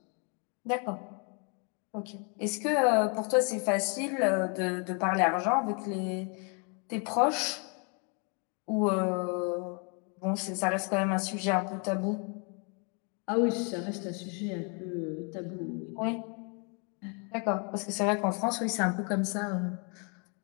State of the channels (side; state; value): right; quieter; 36.7 dB